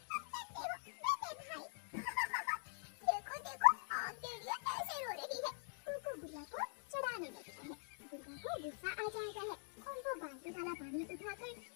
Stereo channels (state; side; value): silent; right; digital silence